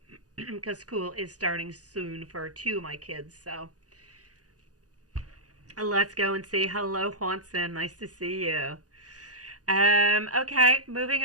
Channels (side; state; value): left; late; 0.67 ms